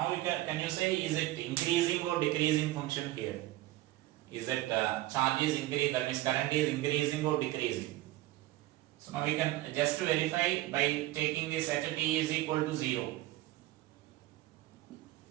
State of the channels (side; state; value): left; quieter; 16.9 dB